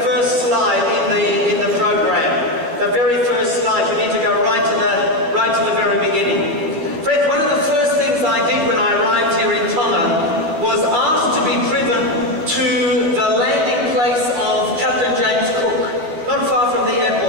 first slide in the program. The very first slide. You need to go right to the very beginning. Friends, one of the first things I did when I arrived here in Tonga was asked to be driven to the landing place of Captain James Cook, not far from the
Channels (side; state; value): left; late; 13 ms